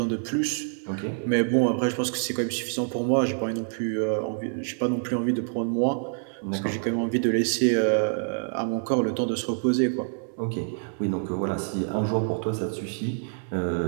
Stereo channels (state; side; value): silent; left; 59 dB below the other